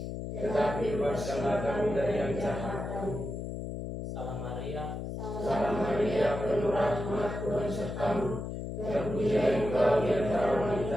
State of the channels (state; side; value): noise; left; hum, 6 dB below the sound